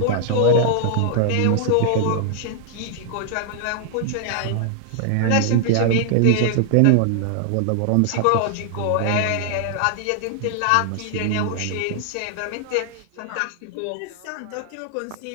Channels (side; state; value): both; different; correlation -0.01